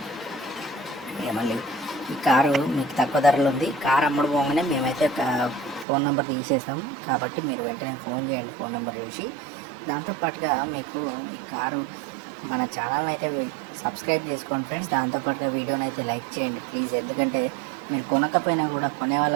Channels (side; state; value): left; drops out; at 5.9 s